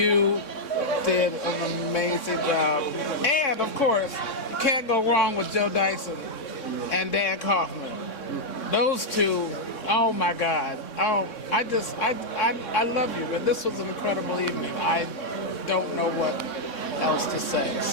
did an amazing job. And of course, you can't go wrong with Joe Dyson and Dan Kaufman. Those two, oh my God. Oh, I love you, man. This was an incredible evening. I don't know what else to say.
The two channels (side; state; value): right; late; 3.6 ms